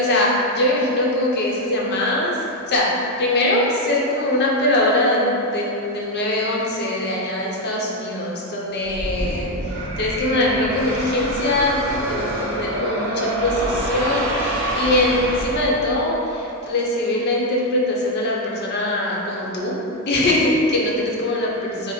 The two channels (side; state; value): both; normal; correlation 0.04